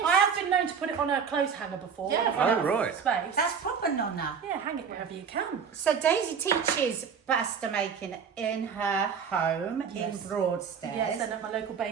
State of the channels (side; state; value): left; quieter; 6.6 dB